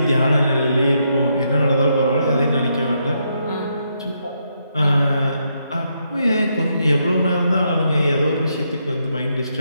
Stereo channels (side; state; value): both; inverted; correlation -0.78